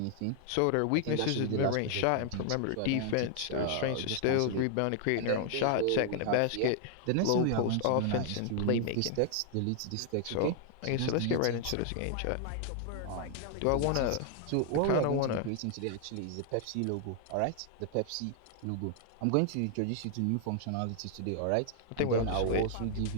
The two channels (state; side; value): different; both; correlation 0.00